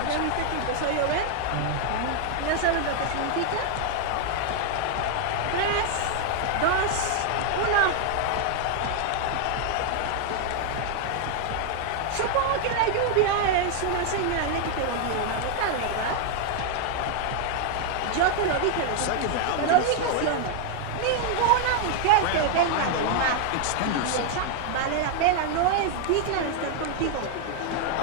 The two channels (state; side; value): different; both; correlation 0.00